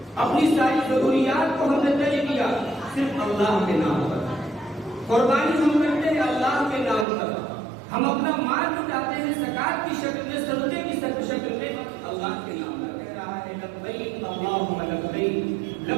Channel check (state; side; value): drops out; left; at 7.1 s